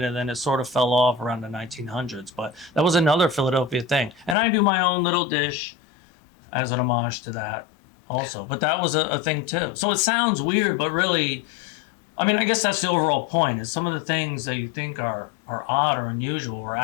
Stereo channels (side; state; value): right; drops out; at 4.4 s